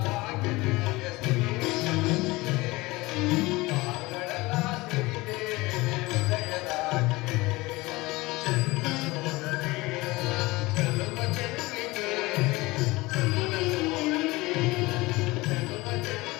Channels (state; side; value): quieter; right; 21.6 dB